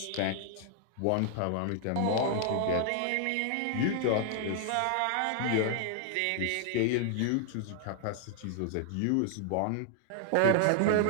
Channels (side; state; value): both; different; correlation 0.00